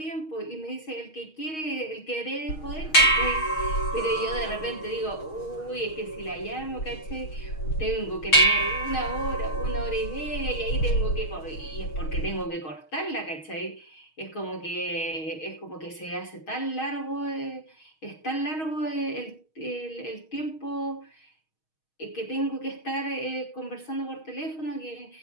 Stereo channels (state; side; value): late; right; 6.4 ms